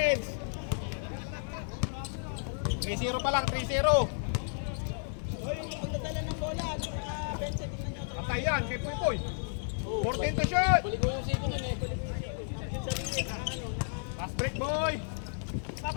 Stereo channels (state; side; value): silent; right; 56 dB below the other